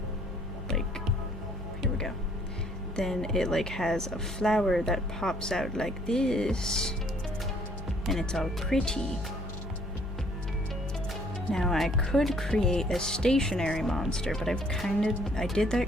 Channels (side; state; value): both; normal; correlation 0.62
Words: like, here we go. Then it like has a flower that pops out like this, and it's all pretty. Now I could create a stationary monster, but I did